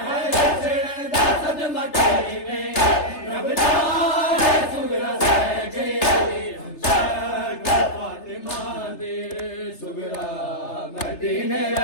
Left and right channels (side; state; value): right; late; 3.3 ms